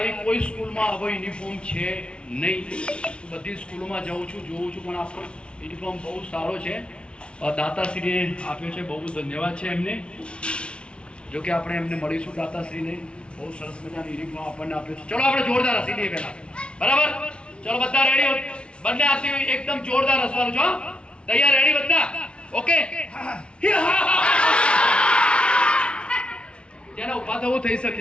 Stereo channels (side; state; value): right; late; 0.058 ms